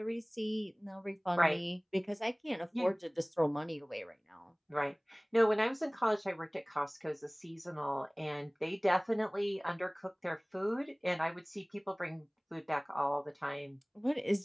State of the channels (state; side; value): identical; both; correlation 1.00